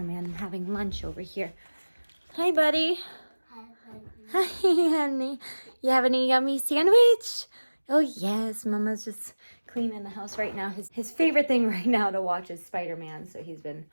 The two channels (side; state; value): both; inverted; correlation -1.00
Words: and having lunch over here. Hi, buddy. Hi, honey. Hi, honey. You having a yummy sandwich? Oh, yes. Mama's just cleaning the house right now. His favorite thing right now to watch is Spider-Man, so he's been